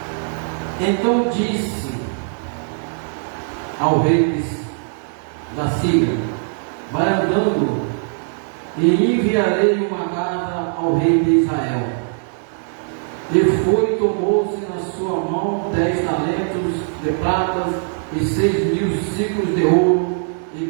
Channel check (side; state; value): left; silent; digital silence